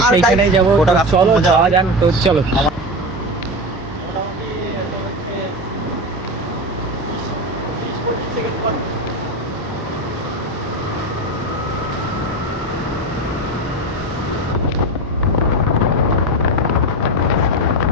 সেইখানেই যাবো। চলো যাওয়া যাক। তো চলো।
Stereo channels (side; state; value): both; normal; correlation 0.21